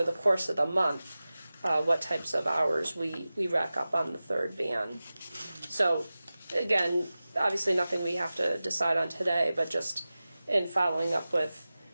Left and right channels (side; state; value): both; inverted; correlation -0.96